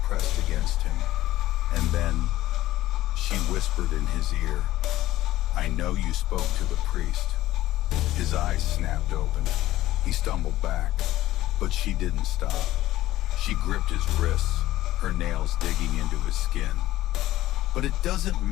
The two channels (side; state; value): right; quieter; 15.2 dB